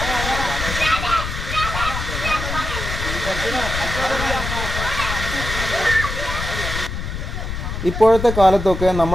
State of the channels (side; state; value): left; noise; rumble, 5 dB below the sound